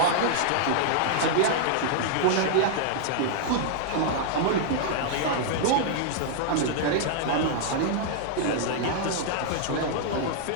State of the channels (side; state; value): both; different; correlation -0.01